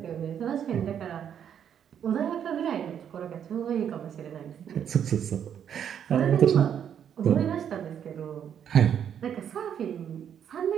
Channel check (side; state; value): left; quieter; 8.8 dB